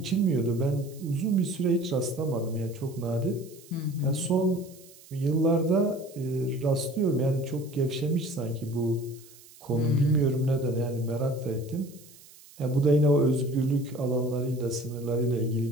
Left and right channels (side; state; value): right; noise; hiss, 23 dB below the sound